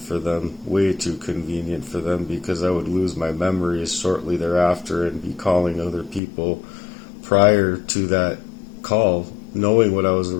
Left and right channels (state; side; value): drops out; right; at 6.2 s